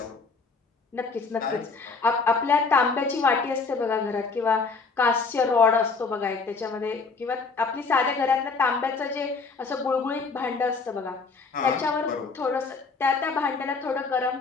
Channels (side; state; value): right; quieter; 4.4 dB